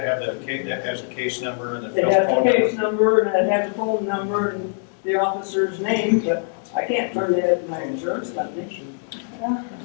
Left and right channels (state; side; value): silent; right; digital silence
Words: have the case, that has a case number and the It phone has the number? case number and it has the phone number and the officer's name, but I can't turn it in my insurance company.